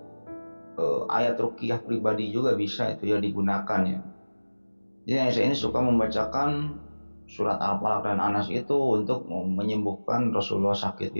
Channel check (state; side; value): inverted; both; correlation -1.00